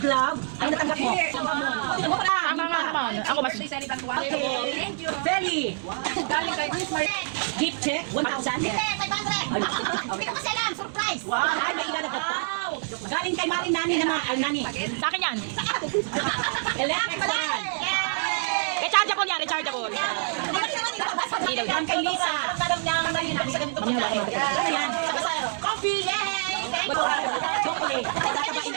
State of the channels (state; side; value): silent; left; digital silence